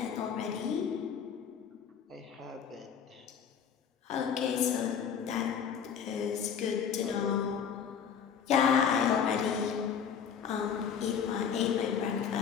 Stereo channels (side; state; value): right; quieter; 7.5 dB